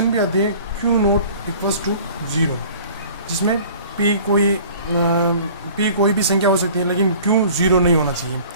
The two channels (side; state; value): both; inverted; correlation -0.48